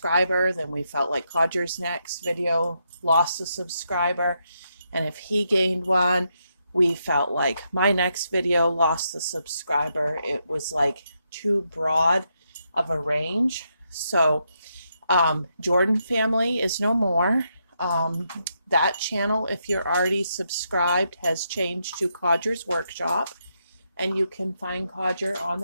then we felt like Codger's next video lost a subscriber. And if he gained one, we felt like my next video lost a subscriber. It was like too broad of a range. So Jordan family is no more. That channel, if you're already subscribed, has changed to Codger's Workshop, and you can find Codger on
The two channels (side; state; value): both; inverted; correlation -0.81